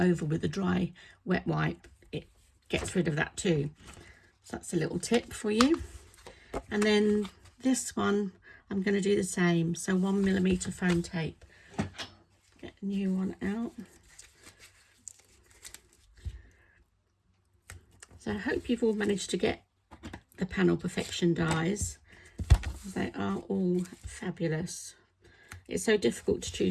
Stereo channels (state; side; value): identical; both; correlation 1.00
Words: with a dry wet wipe, it gets rid of that too. So that's a little tip for you. And then this one, I'm going to do the same. So 1mm foam tape. Get a new one out. So I hope you've all managed to get the Panel Perfection dies. They are all fabulous. It's so difficult to